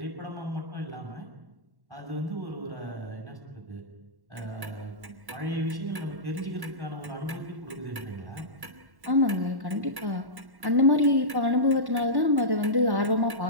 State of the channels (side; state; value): left; late; 1.1 ms